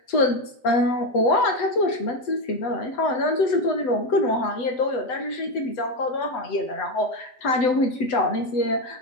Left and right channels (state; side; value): late; right; 8.0 ms